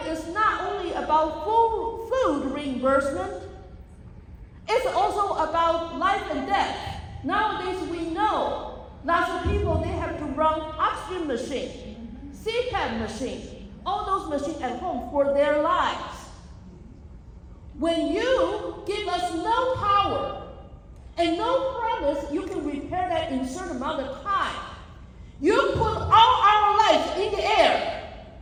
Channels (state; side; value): identical; both; correlation 1.00